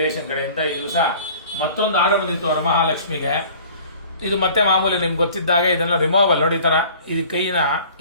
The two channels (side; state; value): both; inverted; correlation -0.47